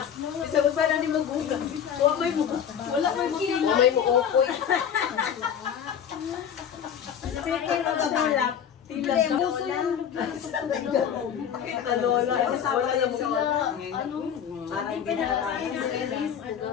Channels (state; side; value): quieter; right; 8.4 dB